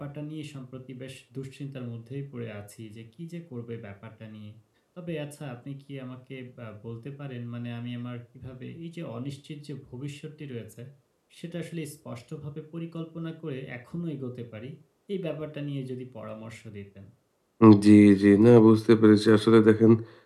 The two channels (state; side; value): identical; both; correlation 1.00